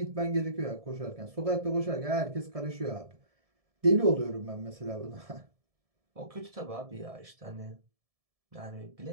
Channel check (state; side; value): late; left; 1.7 ms